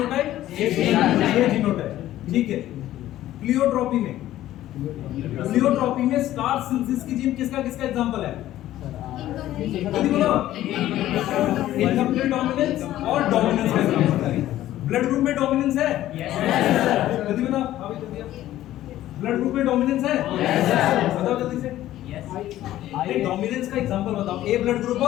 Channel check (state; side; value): quieter; right; 13.9 dB